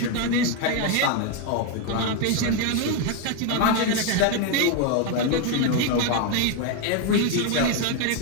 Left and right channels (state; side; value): different; both; correlation 0.02